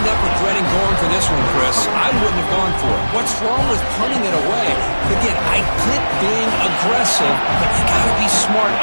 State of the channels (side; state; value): both; inverted; correlation -1.00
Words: up regretting going for this one, Chris. I wouldn't have gone for it. What's wrong with punting it away? Again, I get being aggressive, but you got to be smart